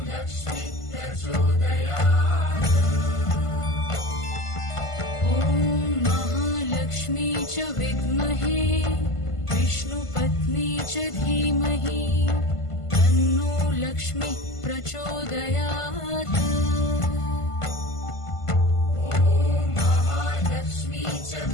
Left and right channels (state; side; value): late; right; 1.5 ms